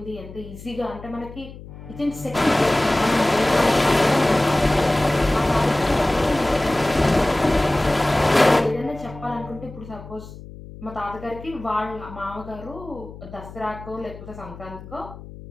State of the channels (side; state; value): left; noise; hum, 15 dB below the sound